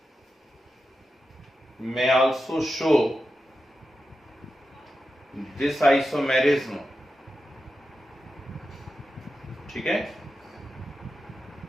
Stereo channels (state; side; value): normal; both; correlation 0.90